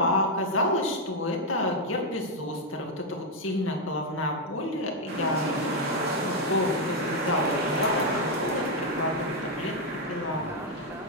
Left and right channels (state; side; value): normal; both; correlation 0.01